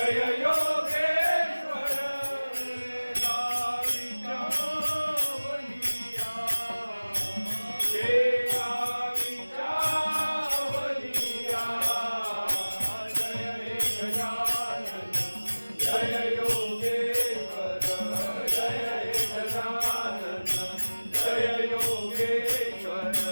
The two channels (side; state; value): both; inverted; correlation -1.00